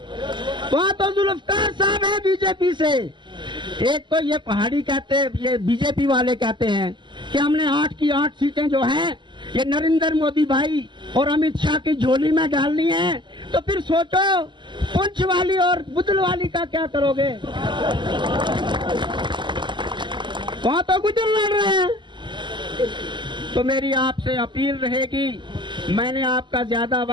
वहाँ तो जुल्फकार साहब है बीजेपी से। एक तो ये पहाड़ी कहते हैं, ये बीजेपी वाले कहते हैं कि हमने 8 की 8 सीटें जो हैं ये नरेंद्र मोदी भाई और अमित शाह की झोली में डालनी है। तो फिर सोचो पुंछ वाली और बुदल वाली का क्या करोगे? वहाँ तो गुजर लड़ रहे हैं। तो मेरी आपसे अपील रहेगी, मैंने आपका ज्यादा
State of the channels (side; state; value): left; late; 0.22 ms